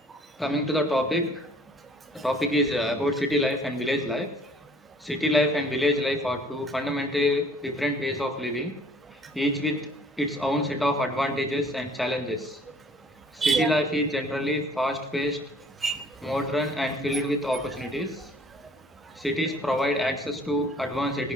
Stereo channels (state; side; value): normal; both; correlation 0.55